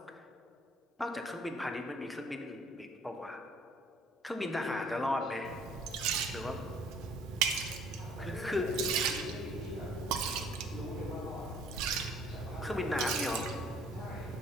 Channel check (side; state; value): both; normal; correlation 0.58